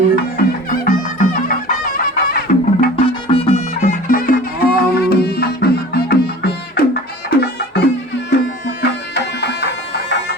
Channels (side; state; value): both; normal; correlation 0.41